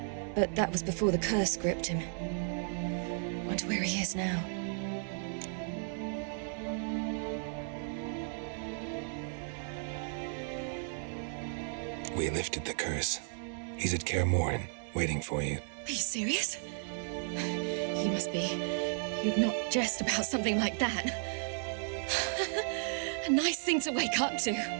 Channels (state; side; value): silent; left; 55 dB below the other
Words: But that was before the curse gripped him. Wonder where he is now. We lifted the curse. He's at Kaer Morhen, waiting for you. Are you serious? You must be. You'd not jest about something like that. A nice thing to wake up to.